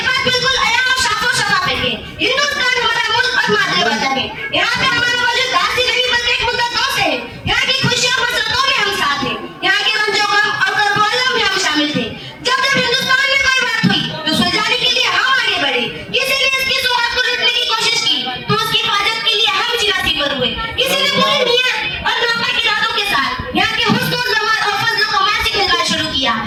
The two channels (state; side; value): identical; both; correlation 1.00